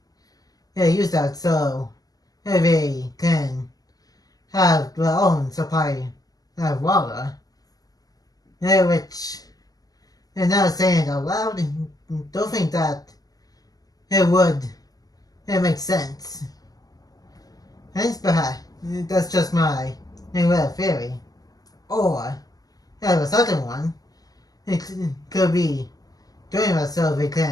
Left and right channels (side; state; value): right; late; 0.18 ms